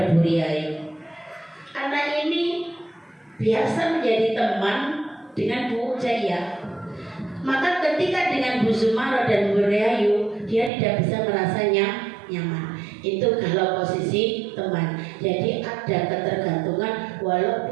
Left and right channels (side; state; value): left; drops out; at 10.7 s